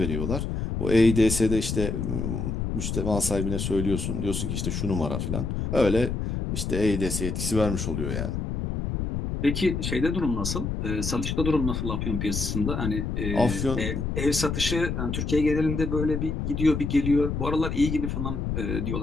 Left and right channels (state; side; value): noise; left; rumble, 2 dB below the sound